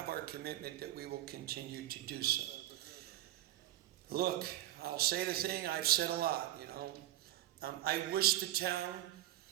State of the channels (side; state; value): left; quieter; 14.4 dB